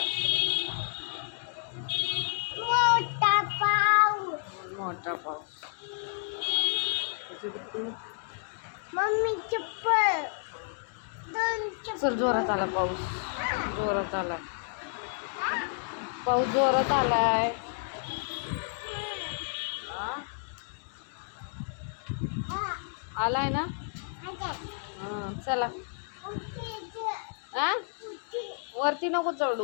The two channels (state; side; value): silent; right; digital silence